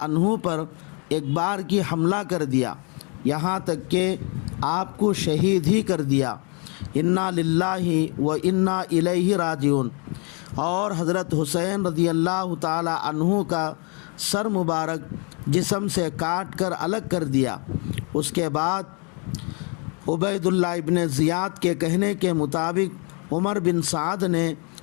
عنہ پر ایک بار کی حملہ کر دیا، یہاں تک کہ آپ کو شہید ہی کر دیا۔ انا للہ و انا الیہ راجعون۔ اور حضرت حسین رضی اللہ تعالی عنہ کا سر مبارک جسم سے کاٹ کر الگ کر دیا۔ اس کے بعد عبید اللہ ابن زیاد کے کہنے کے مطابق عمر بن سعد نے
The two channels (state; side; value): quieter; right; 34.9 dB